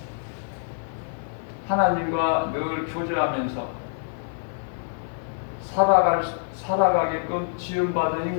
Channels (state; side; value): silent; right; 56 dB below the other